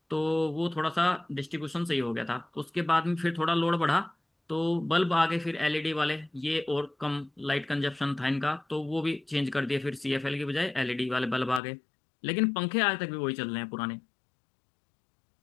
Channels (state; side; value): drops out; right; at 11.6 s